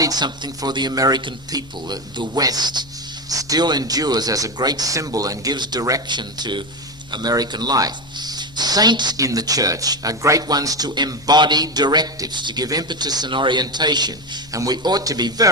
something for the American people. The West still endures as a great symbol and gives direction to American life. Saints in the church are great ones to embody directives, to give impetus and orientation, and we ought to be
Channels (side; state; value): left; noise; hum, 23 dB below the sound